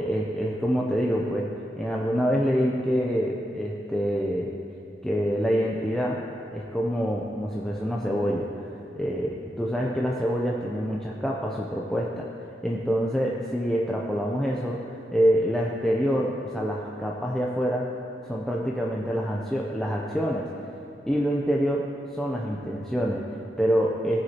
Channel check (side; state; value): both; normal; correlation 0.85